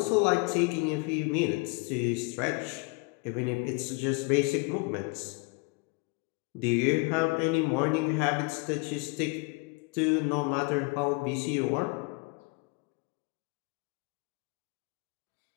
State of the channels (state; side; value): quieter; right; 29.9 dB